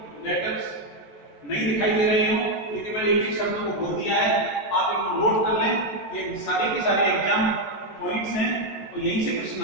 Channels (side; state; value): right; late; 14 ms